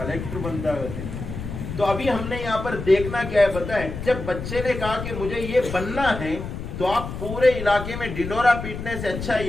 बनता है। तो अभी हमने यहाँ पर देखना क्या है पता है? जब बच्चे ने कहा कि मुझे ये बनना है, तो आप पूरे इलाके में ढिंडोरा पीटने से अच्छा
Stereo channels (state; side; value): noise; left; rumble, 7 dB below the sound